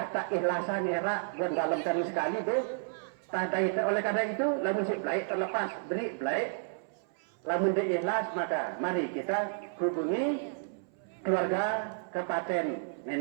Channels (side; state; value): left; silent; 57 dB below the other